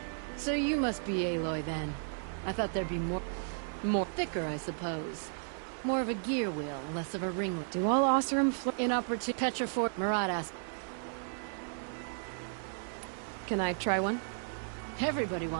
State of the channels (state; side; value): silent; left; digital silence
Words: So you must be Aloy then. I thought there'd be more thicker, I suppose. More of a gear wheel, less of a ringlet. Do all Oseram inopportune Petrifor Marat asked. Can I try one? Everybody